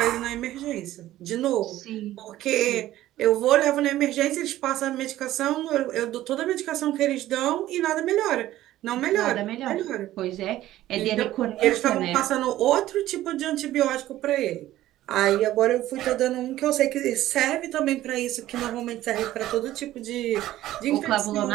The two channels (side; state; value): left; quieter; 14.5 dB